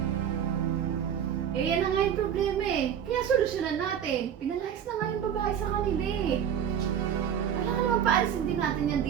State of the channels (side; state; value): left; quieter; 8.9 dB